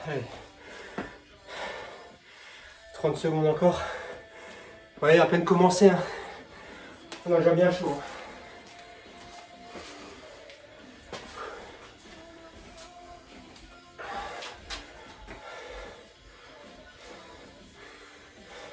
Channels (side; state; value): both; identical; correlation 1.00